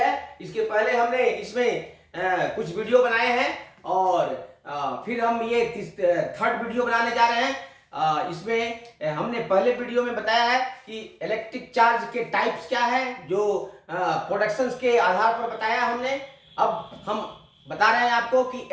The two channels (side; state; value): both; identical; correlation 1.00